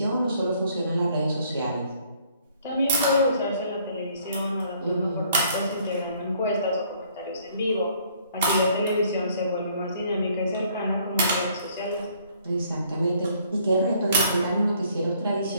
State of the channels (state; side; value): inverted; both; correlation -0.63